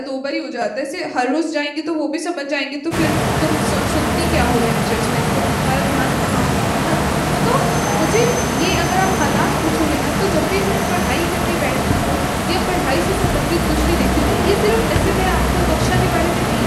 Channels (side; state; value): both; identical; correlation 1.00